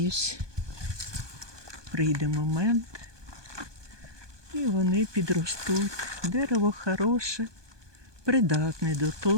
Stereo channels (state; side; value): late; left; 1.2 ms